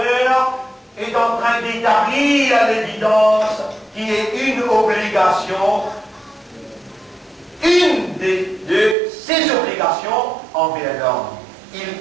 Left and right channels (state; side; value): drops out; left; at 9.0 s